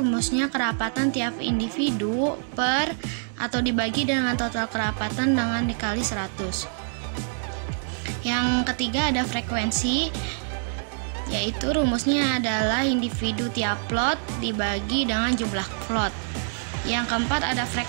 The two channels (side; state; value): left; silent; digital silence